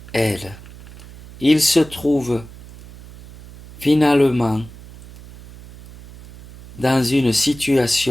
elle, ils se trouvent finalement dans une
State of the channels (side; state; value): right; noise; hum, 19 dB below the sound